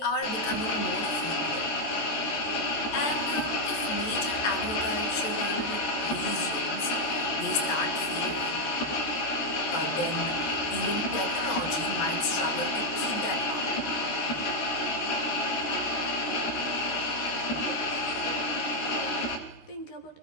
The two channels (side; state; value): right; late; 13 ms